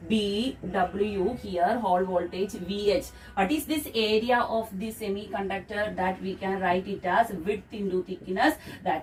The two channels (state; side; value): identical; both; correlation 1.00